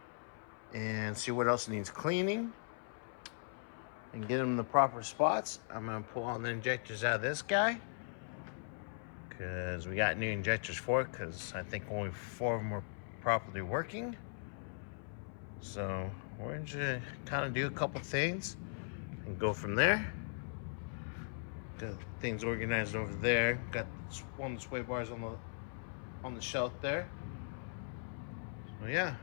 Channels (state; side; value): silent; right; 52 dB below the other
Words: and see what else needs cleaning and get them in the proper spots. I'm gonna pull all the injectors out of this guy because we got new injectors for it, because I think only 4 of them were properly working. So we're gonna kind of do a couple things and go from there. Got things organized over there. Got one of the sway bars on the shelf there. So yeah,